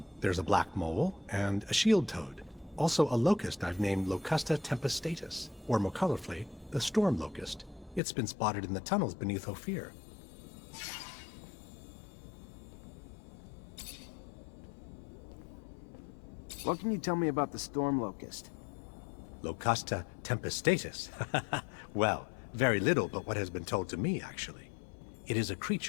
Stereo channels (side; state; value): right; drops out; at 8.0 s